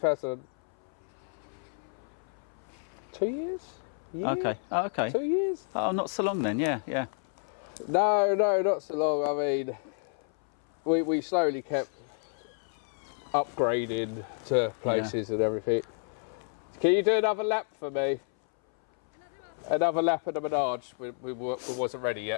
2 years? Year? Okay. Oh, okay. 2 years? Oh, not so long then. Yeah. No, not so long. I mean, we slowly kept upgrading to places and everything. Can you do another lap for me? Another lap of the menage. We wasn't ready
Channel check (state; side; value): silent; right; 58 dB below the other